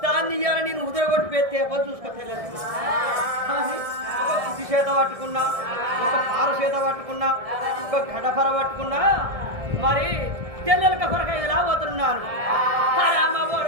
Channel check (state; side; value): late; left; 1.6 ms